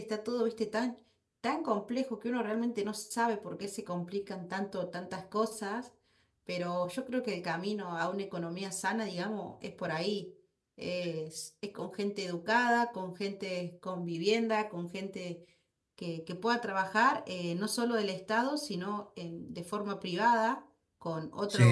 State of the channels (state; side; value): identical; both; correlation 1.00